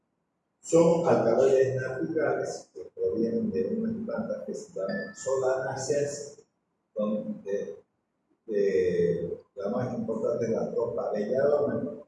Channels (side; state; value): both; identical; correlation 1.00